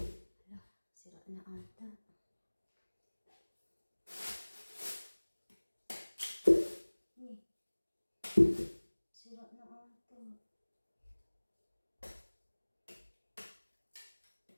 sira na ata. Sira na ata.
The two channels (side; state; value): both; inverted; correlation -1.00